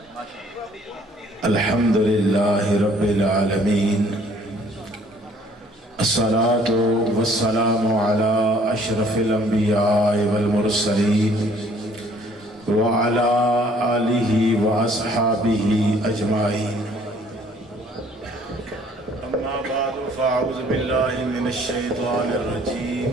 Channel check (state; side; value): normal; both; correlation 0.59